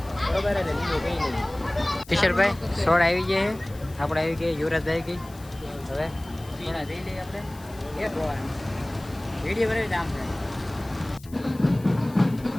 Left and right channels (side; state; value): left; noise; hiss, 22 dB below the sound